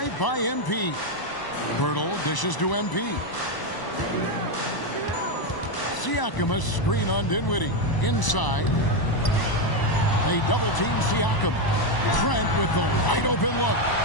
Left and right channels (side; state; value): right; late; 1.0 ms